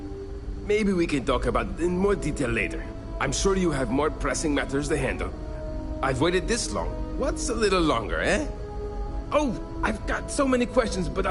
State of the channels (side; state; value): both; identical; correlation 1.00